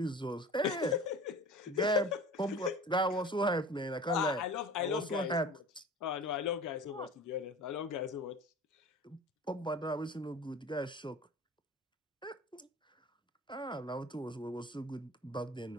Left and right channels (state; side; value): normal; both; correlation 0.40